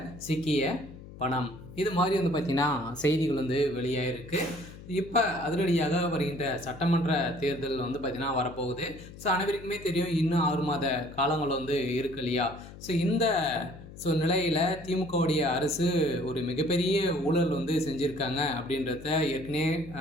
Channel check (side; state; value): left; noise; hum, 16 dB below the sound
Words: சிக்கிய பணம், இது மாதிரி பார்த்தீங்கன்னா செய்திகள் வெளியாகிருக்கு. இப்போ அதிரடியாக வருகின்ற சட்டமன்ற தேர்தல் பார்த்தீங்கன்னா வரப்போகுது. ஸோ அனைவருக்குமே தெரியும், இன்னும் 6 மாத காலங்கள் இருக்கு இல்லையா? ஸோ நிலையில் திமுகவுடைய அரசு ஒரு மிகப்பெரிய ஊழல் செஞ்சுருக்காங்க அப்படின்றத ஏற்கனவே